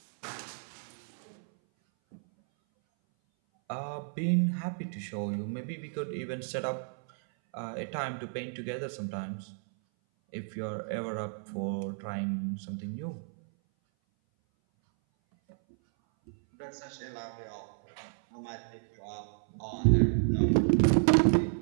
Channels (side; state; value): left; silent; 56 dB below the other